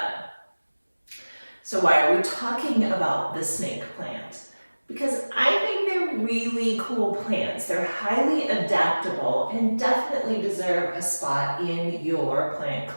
So why are we talking about the snake plant? Because I think they're really cool plants. They're highly adaptable and definitely deserve a spot in your plant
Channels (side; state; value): both; inverted; correlation -1.00